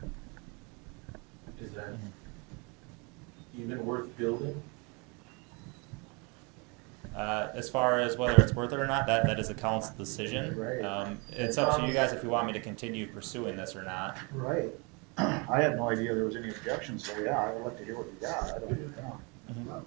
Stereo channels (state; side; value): quieter; left; 30.8 dB